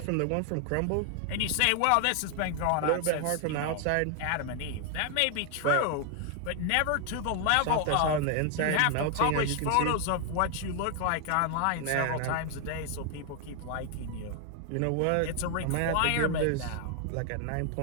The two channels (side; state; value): both; different; correlation 0.00